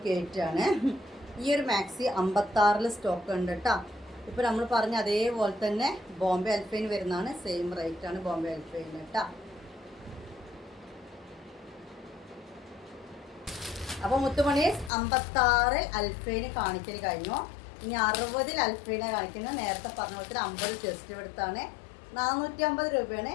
കയറ്റാണ്. ഈ ഒരു മാക്സി 56 സ്റ്റോക്ക് ഉണ്ട് കേട്ടോ. ഇപ്പോൾ നമ്മൾ പറഞ്ഞ അതേപോലെ തന്നെ ബോംബെ അൽഫൈൻ വരുന്നതാണ്. സെയിം റേറ്റാണ് ബോംബെ അൽഫൈൻ കേട്ടോ. അപ്പോൾ മുത്തുമണി 56 അൽഫൈന് കാണിക്കൽ കഴിഞ്ഞു. ഇനി 60 അൽഫൈനെ കാണിക്കുന്നത്. നേരത്തെ പറഞ്ഞ പോലെ 50 ചെസ്റ്റ് എടുത്താണ്. 450 രൂപയാണ്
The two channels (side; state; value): right; drops out; at 14.9 s